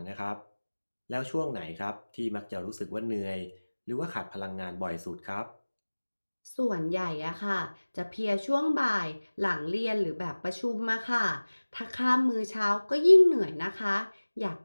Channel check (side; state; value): both; inverted; correlation -1.00